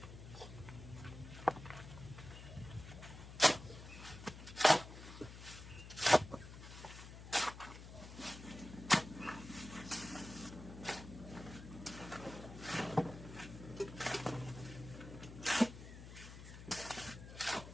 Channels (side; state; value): left; noise; hum, 13 dB below the sound